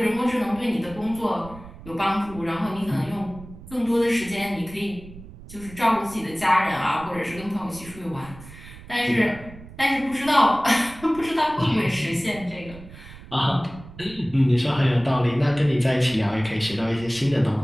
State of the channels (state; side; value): noise; right; rumble, 17 dB below the sound